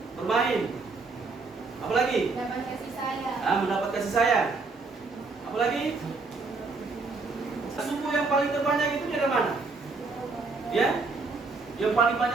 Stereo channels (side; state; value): left; quieter; 4.0 dB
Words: bermain, apalagi? Mendapat kasih sayang. Mendapat kasih sayang. Apalagi? Suku yang paling terbanyak itu di mana? Ya? Yang paling